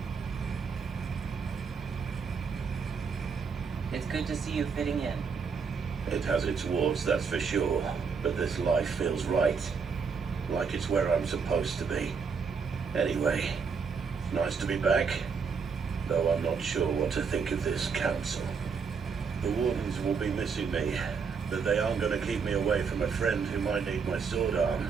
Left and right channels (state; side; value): quieter; left; 5.7 dB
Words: It's good to see you fitting in. It has its warts, that's for sure. But this life feels right. Like it's where I'm supposed to be. Anyway, nice to be back. Though I'm not sure what to think of this council. The wardens will be missing me, but they aren't going to keep me away from a friend who might need my sword